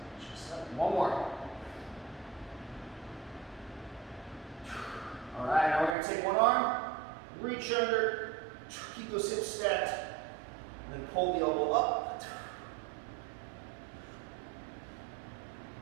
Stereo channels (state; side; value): drops out; left; at 6.0 s